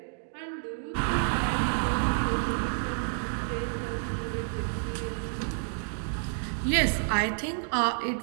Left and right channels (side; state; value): left; silent; digital silence